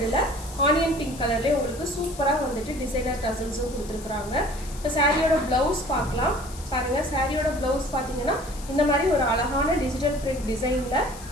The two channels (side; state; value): left; noise; hiss, 17 dB below the sound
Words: ஆனியன் பிங்க் கலர்லேயே உங்களுக்கு சூப்பராக வந்துட்டு டிசைனர் டசல்ஸும் கொடுத்துருக்குறாங்க. இப்போ சாரியோட ப்ளவுஸ் பார்க்கலாம். பாருங்கள், சாரியோட ப்ளவுஸ் பார்த்தீங்கன்னா இந்த மாதிரி ஒரு அழகான டிஜிட்டல் பிரிண்ட் டிசைனில்